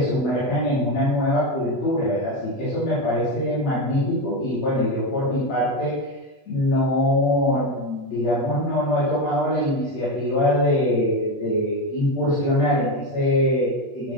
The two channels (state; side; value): late; right; 8.3 ms